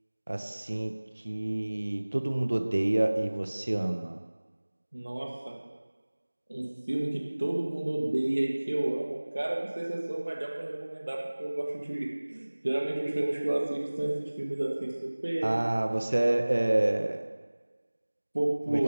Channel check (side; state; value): both; inverted; correlation -1.00